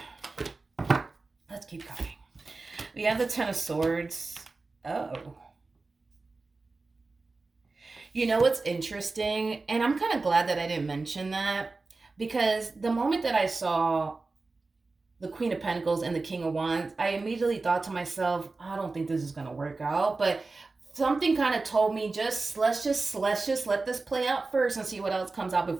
let's keep going. We have the Ten of Swords. Oh. You know what's interesting? And I'm kind of glad that I didn't mention that, because the moment that I saw the Queen of Pentacles and the King of Wands, I immediately thought to myself, I don't think this is going to work out. But something kind of told me let's just let this play out first and see what else comes out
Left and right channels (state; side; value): quieter; left; 3.7 dB